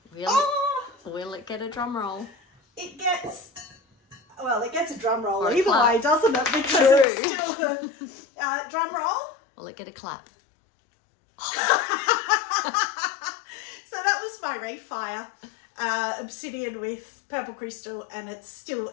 Will it get a drum roll? It gets a drum roll either way, doesn't it? Because it's still a drum roll. Will it get a clap? So that was my refire, obsidian with purple crystal, and it's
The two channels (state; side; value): drops out; right; at 7.1 s